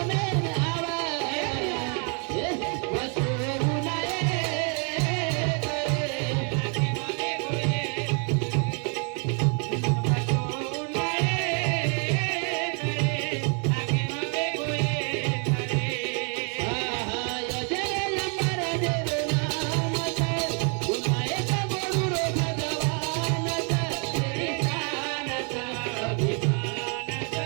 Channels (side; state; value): left; quieter; 38.5 dB